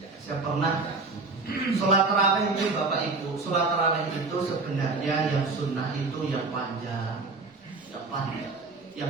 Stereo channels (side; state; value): left; quieter; 3.8 dB